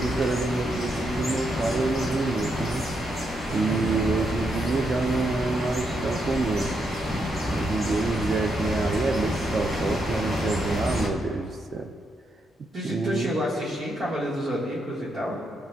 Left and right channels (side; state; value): both; normal; correlation 0.80